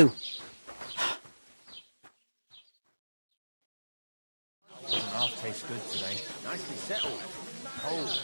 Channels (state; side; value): inverted; both; correlation -1.00